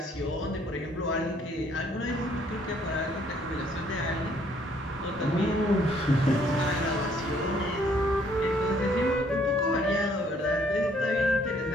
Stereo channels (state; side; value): normal; both; correlation 0.64